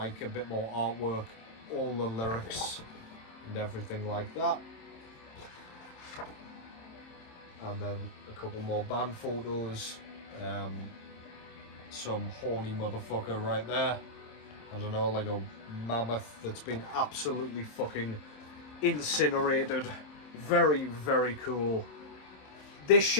a bit more artwork, all the lyrics and everything like that, and then a couple more band photos. Some horny motherfucker right there, I don't know, like a mammoth that's been absolutely fucking incinerated. Very, very cool. This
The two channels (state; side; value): late; right; 27 ms